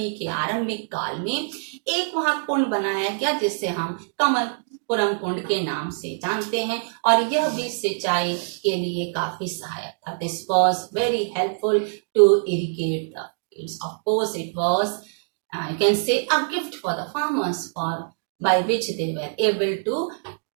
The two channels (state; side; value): silent; left; digital silence